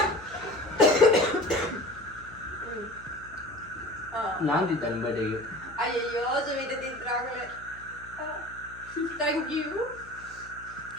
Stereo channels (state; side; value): noise; left; hum, 20 dB below the sound